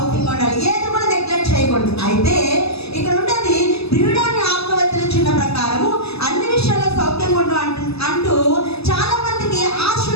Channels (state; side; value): late; right; 0.78 ms